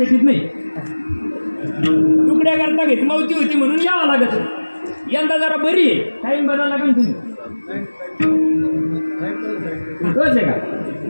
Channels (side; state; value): both; inverted; correlation -1.00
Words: नाही. तुकड्या करता घेत मौती होती म्हणून यावं लागत. यंदा जरा बरी आहे, टाईम बदला लागेल तुम्ही. तोच आहे का?